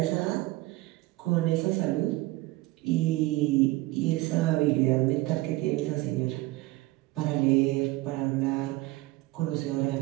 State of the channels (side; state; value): left; quieter; 19.3 dB